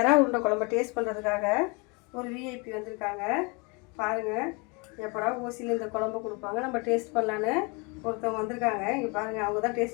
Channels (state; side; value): quieter; right; 30.2 dB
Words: உருண்டை குழம்பை டேஸ்ட் பண்ணுறதுக்காக ஒரு விஐபி வந்திருக்காங்க. பாருங்கள், எப்படா ஓசியில் இந்த குழம்பு கொடுப்பாங்க நம்ம டேஸ்ட் பண்ணலான்னு ஒருத்தவங்க வந்திருக்காங்க. இங்கே பாருங்கள், அவங்க தான்